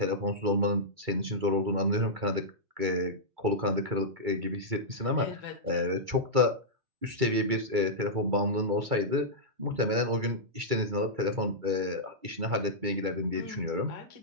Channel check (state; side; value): late; left; 2.3 ms